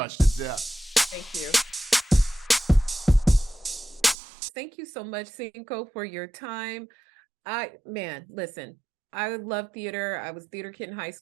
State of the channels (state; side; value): drops out; left; at 4.2 s